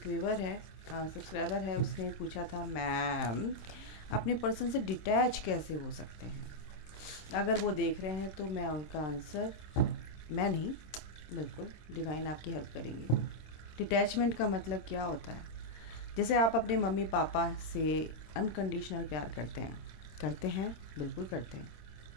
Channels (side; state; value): right; late; 26 ms